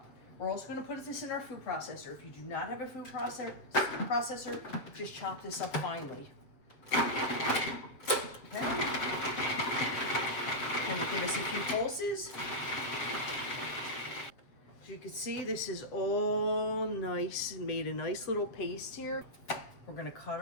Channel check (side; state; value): right; late; 7.5 ms